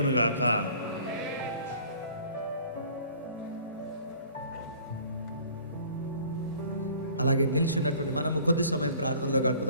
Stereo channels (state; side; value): inverted; both; correlation -0.50